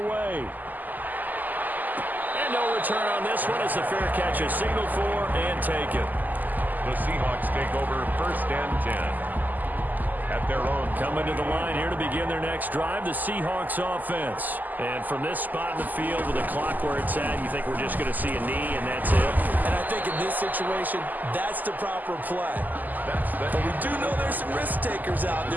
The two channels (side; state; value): left; late; 0.084 ms